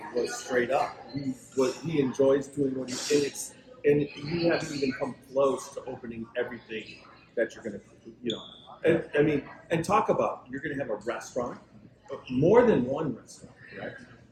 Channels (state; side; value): identical; both; correlation 1.00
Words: was straight up. He enjoys doing what he is, and you haven't even come close to opening everything that you're going to, and talk about you're going to have a restaurant, more than one restaurant, right?